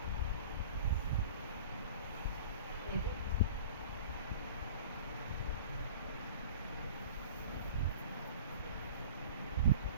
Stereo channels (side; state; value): both; inverted; correlation -0.42